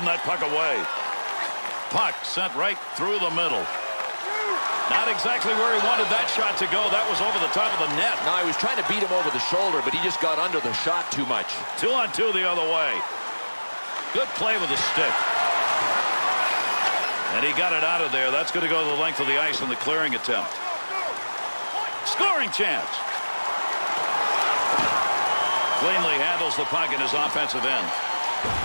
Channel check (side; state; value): both; inverted; correlation -1.00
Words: that puck away. Puck sent right through the middle. Not exactly where he wanted that shot to go. That was over the top of the net. No, he was trying to beat him over the shoulder, but he just got under the shot too much. 2 on 2 the other way. Good play with the stick. And he got it out of there. That's going to go the length of the ice in the clearing attempt. Scoring chance. Cleanly handles the puck in his offensive end.